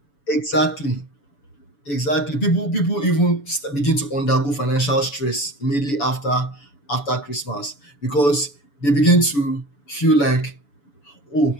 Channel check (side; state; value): right; late; 7.0 ms